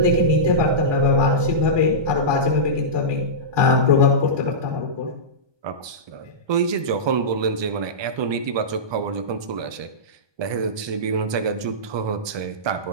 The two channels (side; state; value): left; late; 1.2 ms